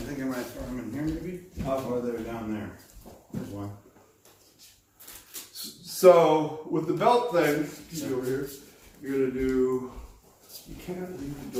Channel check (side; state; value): both; identical; correlation 1.00